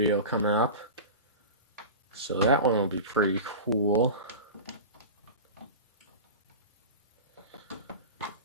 coming up, so that one will be pretty cool.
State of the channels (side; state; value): both; inverted; correlation -0.31